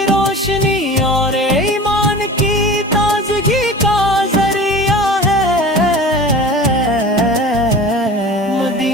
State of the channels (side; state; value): both; normal; correlation 0.38